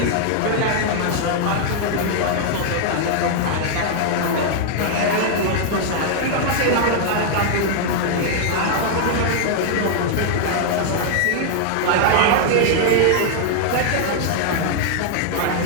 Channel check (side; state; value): both; different; correlation 0.00